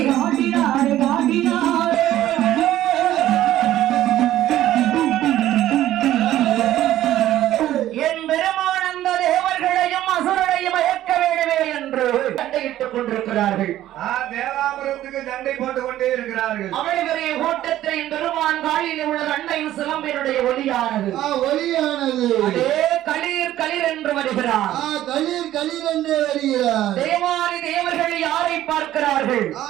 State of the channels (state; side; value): quieter; left; 13.4 dB